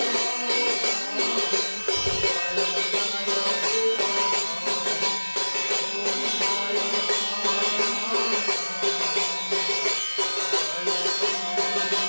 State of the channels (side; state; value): both; inverted; correlation -1.00